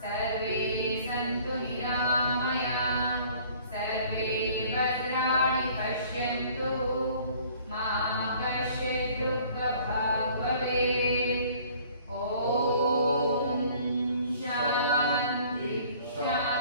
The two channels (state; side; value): inverted; both; correlation -0.53